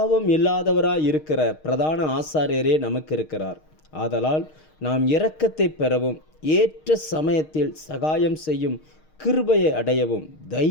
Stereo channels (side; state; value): right; late; 6.5 ms